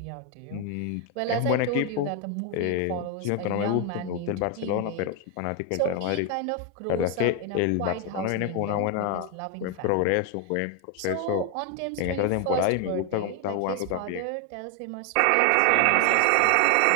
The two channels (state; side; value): different; both; correlation 0.01